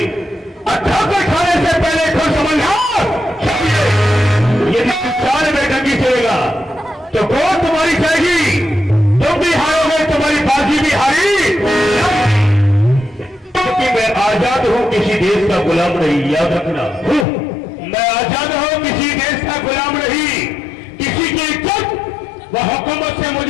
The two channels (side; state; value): right; drops out; at 17.2 s